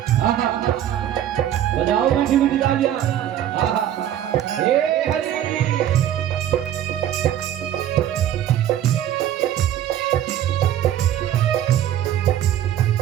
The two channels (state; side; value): quieter; left; 11.2 dB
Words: आहा बजाओ मीठी मीठी तालियां, आहा ए हरि